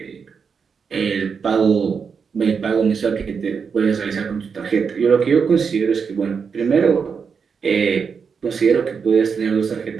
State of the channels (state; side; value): quieter; left; 6.0 dB